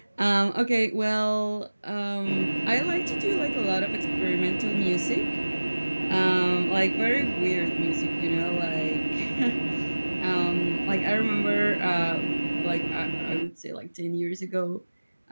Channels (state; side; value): inverted; both; correlation -1.00